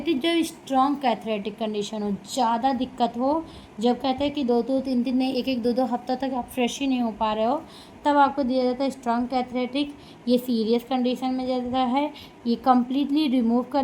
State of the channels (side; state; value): both; identical; correlation 1.00